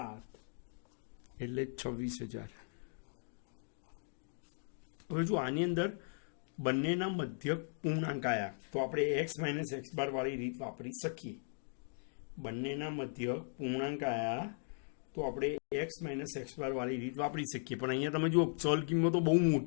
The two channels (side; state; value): right; silent; digital silence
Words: એટલે 26,000. હવે જો આની અંદર બંનેના મધ્યક પૂર્ણાંક આવ્યા તો આપણે એક્સ માઇનસ એક્સ બાર વાળી રીત વાપરી શકીએ. બંનેના મધ્યક પૂર્ણાંક આવ્યા તો આપણે એક્સ માઇનસ એક્સ બાર વાળી રીત વાપરી શકીએ. પણ અહીંયા તમે જુઓ ચલ કિંમતો બહુ